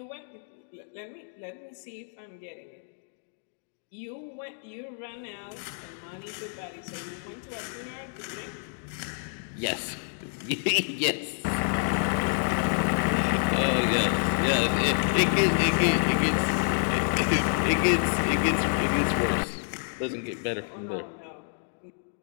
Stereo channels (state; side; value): silent; right; digital silence